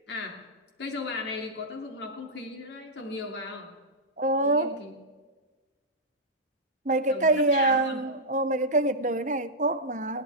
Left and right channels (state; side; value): normal; both; correlation -0.08